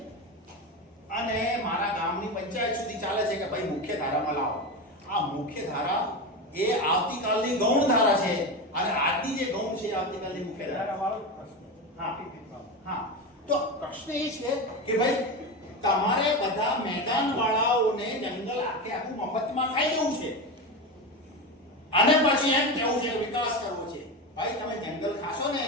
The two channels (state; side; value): normal; both; correlation 0.20